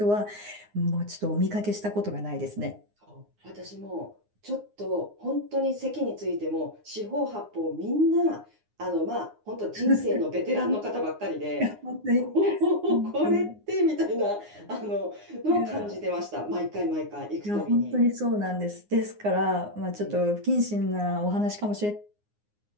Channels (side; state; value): left; late; 9.6 ms